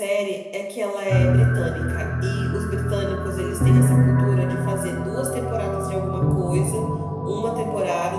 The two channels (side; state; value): both; identical; correlation 1.00